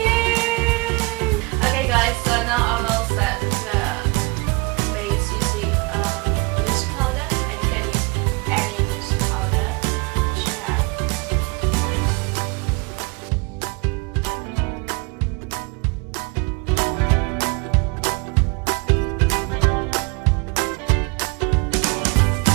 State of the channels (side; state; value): left; quieter; 27.3 dB